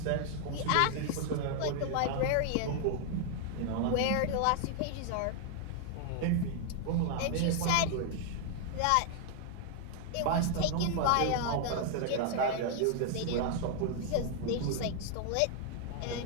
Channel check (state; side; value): different; both; correlation 0.00